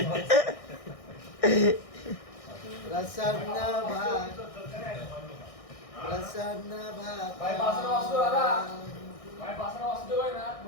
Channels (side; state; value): right; late; 1.6 ms